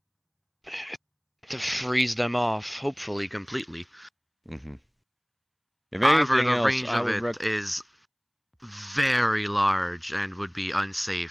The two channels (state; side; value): identical; both; correlation 1.00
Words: To freeze them off, hopefully completely. Mm-hmm. However, the range of it is very large and would be